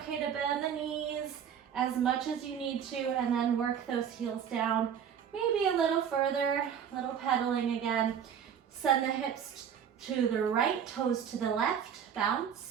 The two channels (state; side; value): quieter; left; 8.2 dB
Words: to bend the knees as much as you need to and then work those heels down. Maybe a little further, a little pedaling again. Send the hips to the right, toes to the left,